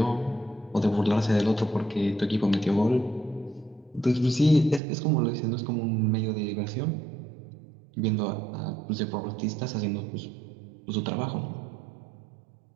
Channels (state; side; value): drops out; left; at 4.8 s